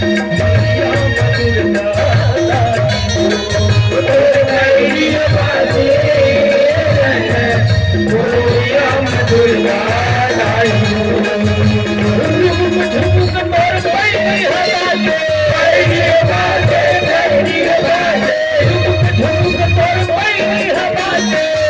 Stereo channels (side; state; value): both; identical; correlation 1.00